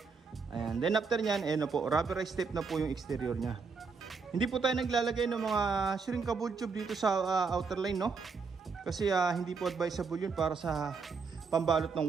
Ayan. Then after nyan, na po, rubberized tape na po yung exterior nya. Hindi po tayo naglalagay ng mga shrinkable tube dito sa outer line, no? Kasi hindi po advisable yun para sa pambalot ng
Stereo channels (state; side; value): quieter; left; 5.0 dB